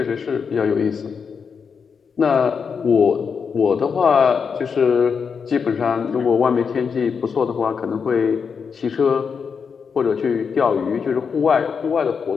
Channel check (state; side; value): quieter; right; 6.0 dB